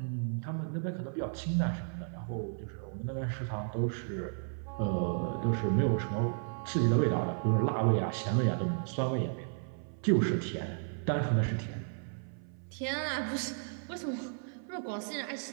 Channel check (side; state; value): left; silent; 55 dB below the other